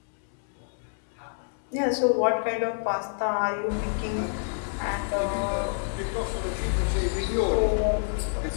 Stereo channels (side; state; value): right; silent; digital silence